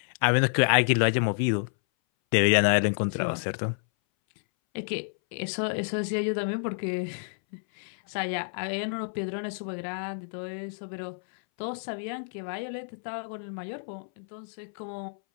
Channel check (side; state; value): right; silent; 59 dB below the other